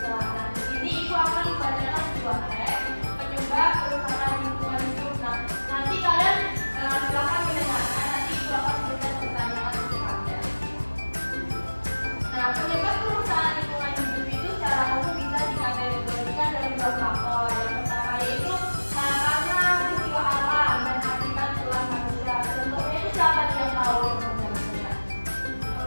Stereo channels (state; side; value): inverted; both; correlation -1.00